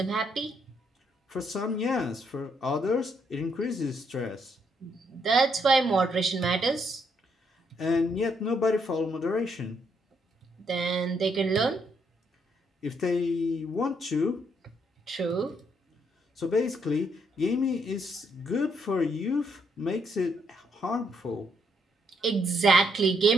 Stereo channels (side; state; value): both; normal; correlation 0.74